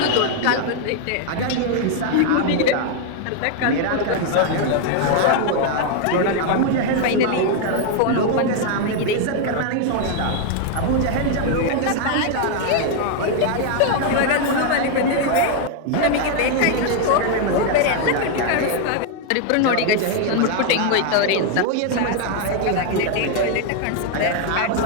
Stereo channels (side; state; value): both; different; correlation 0.00